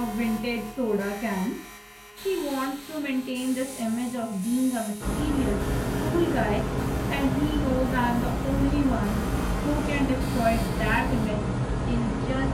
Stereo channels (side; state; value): both; identical; correlation 1.00